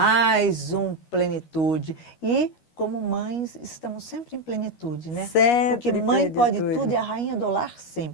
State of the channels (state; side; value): late; right; 13 ms